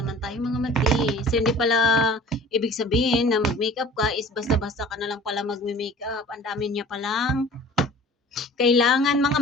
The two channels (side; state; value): both; normal; correlation 0.45